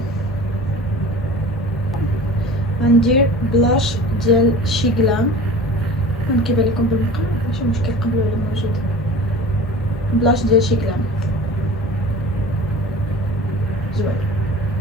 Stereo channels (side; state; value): both; normal; correlation 0.39